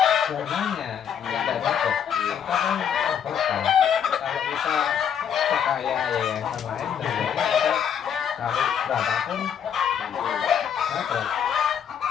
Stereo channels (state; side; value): quieter; right; 8.3 dB